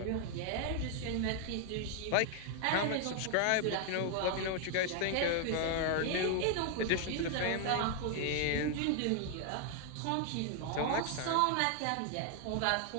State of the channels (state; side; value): different; both; correlation 0.00